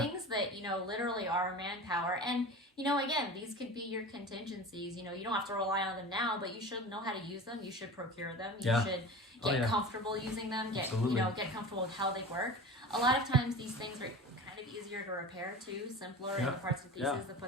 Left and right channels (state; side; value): normal; both; correlation 0.34